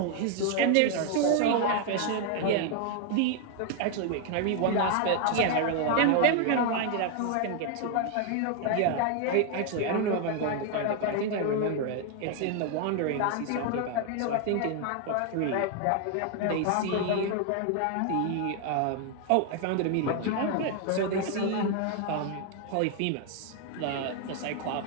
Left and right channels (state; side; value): different; both; correlation 0.00